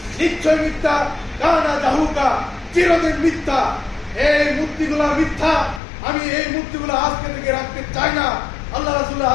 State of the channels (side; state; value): right; drops out; at 5.8 s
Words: নিশ্চয় মিথ্যা, কানা জাহুকা, চিরদিন মিথ্যা। এই মূর্তিগুলা মিথ্যা, আমি এই মূর্তিগুলো আজকে থেকে রাখতে চাই না। আল্লাহ রাসূলের